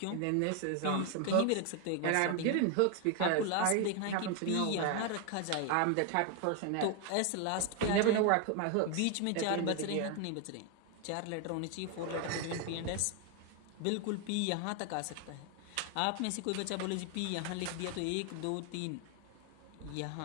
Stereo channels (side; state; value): both; different; correlation 0.01